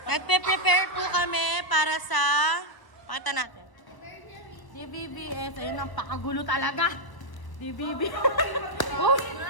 Nagpe-prepare po kami para sa pakita natin. DBBS, ayun ang pakagulo talaga. DBB. Oh.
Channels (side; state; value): right; late; 1.0 ms